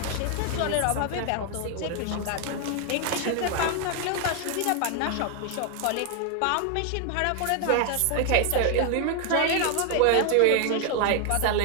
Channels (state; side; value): different; both; correlation 0.00